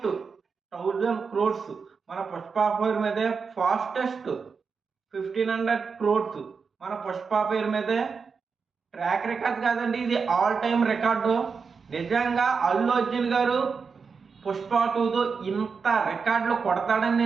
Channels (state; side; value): quieter; left; 5.4 dB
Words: 1000 క్రోడ్స్ మన పుష్ప పేరు మీదే, ఫాస్టెస్ట్ 1500 క్రోడ్స్ మన పుష్ప పేరు మీదే. ట్రాక్ రికార్డ్ కాదండి, ఇది ఆల్ టైమ్ రికార్డు. నిజంగా అల్లు అర్జున్ గారు పుష్ప 2తో ఇంత రికార్డులు కొడతాడని